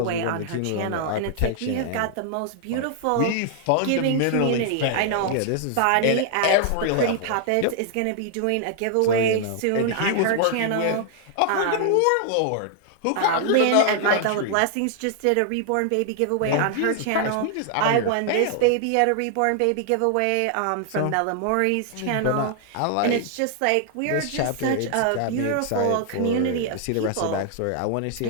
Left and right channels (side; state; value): both; different; correlation 0.00